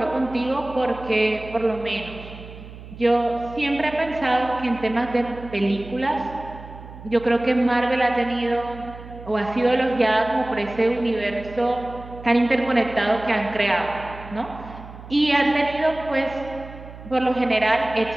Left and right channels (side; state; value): right; noise; hum, 15 dB below the sound